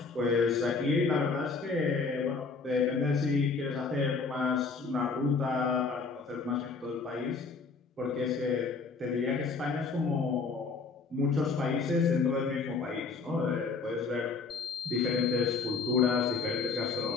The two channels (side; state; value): right; quieter; 4.6 dB